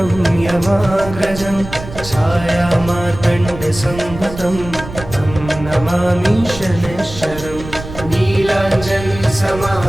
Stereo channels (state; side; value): noise; right; rumble, 12 dB below the sound